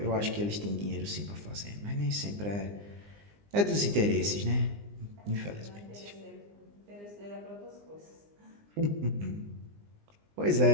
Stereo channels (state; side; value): late; left; 20 ms